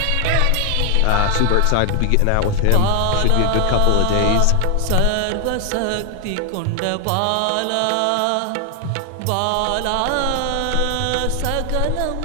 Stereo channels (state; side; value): different; both; correlation 0.00